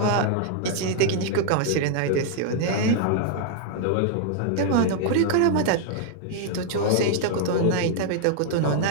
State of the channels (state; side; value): different; both; correlation 0.00